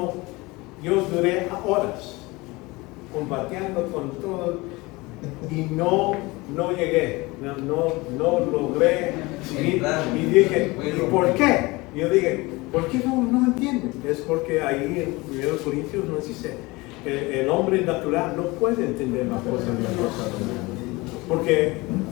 duré horas combatiendo con todo y no llegué, no logré seguir. Y dije, ¿y por qué? Y yo dije, ¿por qué no entienden? Es porque ahí en 1 Corintios nos dice, el hombre natural no puede entender las cosas de Dios,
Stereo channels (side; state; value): right; quieter; 22.9 dB